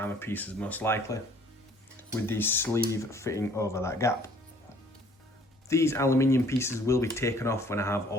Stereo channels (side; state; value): both; normal; correlation 0.57